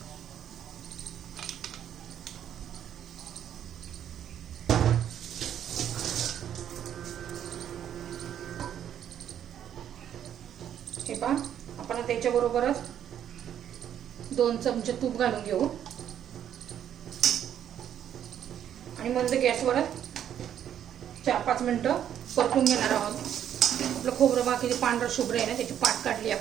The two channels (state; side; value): quieter; left; 9.9 dB